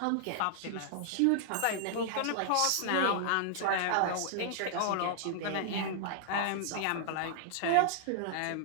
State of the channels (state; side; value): different; both; correlation -0.01